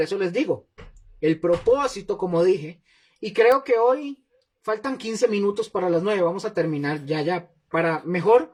eso les digo, el propósito, como dije, y creo que hoy faltan 15 minutos para las 9, vamos a terminar ya,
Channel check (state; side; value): identical; both; correlation 1.00